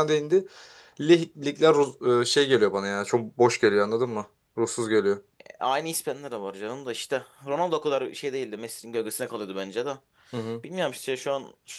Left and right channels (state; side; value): identical; both; correlation 1.00